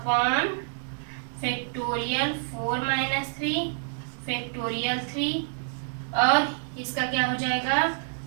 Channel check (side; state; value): left; silent; 60 dB below the other